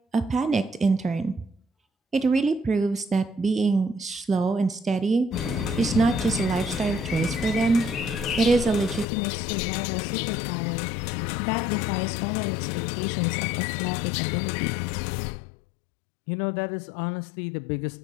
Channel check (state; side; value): drops out; right; at 9.1 s